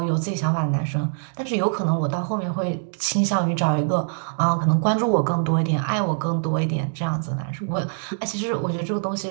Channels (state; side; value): silent; left; digital silence